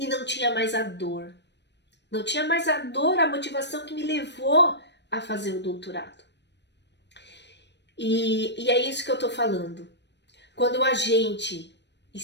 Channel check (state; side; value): late; right; 0.50 ms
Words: não tinha mais a dor. Não tinha mais a dor, a motivação que me levou a fazer o doutorado. E é isso que eu tô falando. Quando a gente